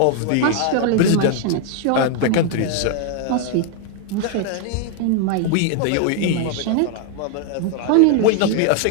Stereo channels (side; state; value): both; different; correlation 0.00